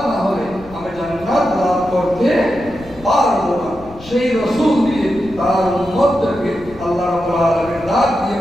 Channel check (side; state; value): left; noise; rumble, 19 dB below the sound